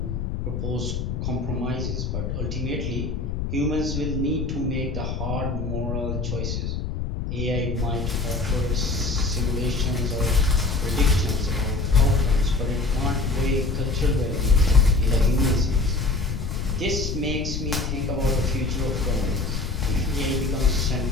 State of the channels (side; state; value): left; noise; rumble, 3 dB below the sound